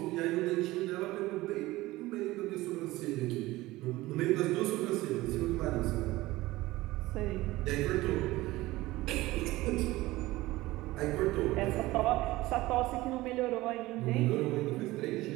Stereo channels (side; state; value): left; quieter; 18.6 dB